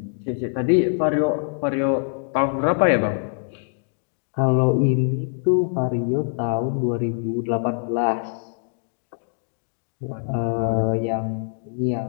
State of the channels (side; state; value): right; silent; digital silence